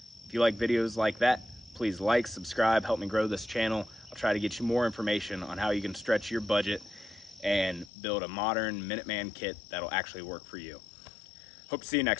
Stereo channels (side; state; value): right; drops out; at 7.9 s